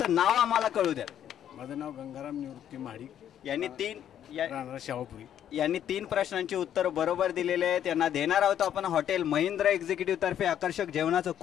नाव आम्हाला कळू द्या. माझं नाव गंगाराम निवृत्ती महाडिक, राहणार शाहूपुरी. यांनी 3 प्रश्नांची उत्तर बरोबर दिलेले आहेत. त्यांना देणार आहोत आपण हॉटेल महेंद्र एक्झिक्युटिव्ह तर्फे आकर्षक जेवणाचं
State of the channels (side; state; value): right; quieter; 10.2 dB